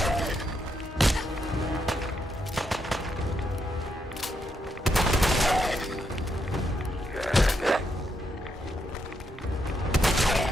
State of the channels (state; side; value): normal; both; correlation 0.80